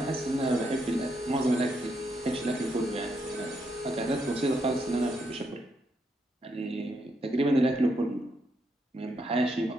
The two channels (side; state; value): both; normal; correlation 0.79